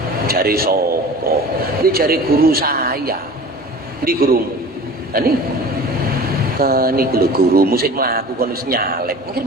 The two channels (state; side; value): normal; both; correlation 0.39